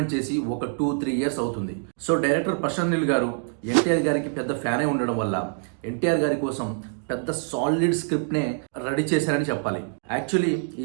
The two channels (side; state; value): left; silent; 62 dB below the other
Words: చేసి ఒక 2-3 ఇయర్స్ అవుతుంది. సో డైరెక్టర్ ప్రశాంత్ నీల్ గారు ఎన్టీఆర్ గారికి పెద్ద ఫ్యానే ఉండడం వల్ల ఎన్టీఆర్ గారి కోసం పెద్ద సాలిడ్ స్క్రిప్ట్నే రెడీ చేశారని చెప్పాలి. యాక్చువల్లీ